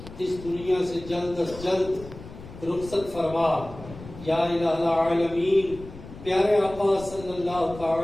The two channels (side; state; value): left; noise; rumble, 15 dB below the sound